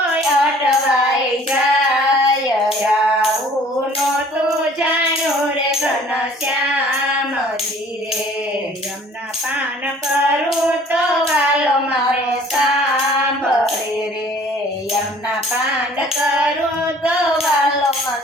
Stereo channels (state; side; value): normal; both; correlation 0.53